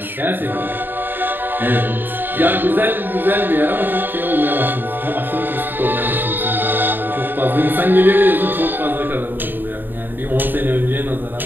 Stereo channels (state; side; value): late; left; 0.093 ms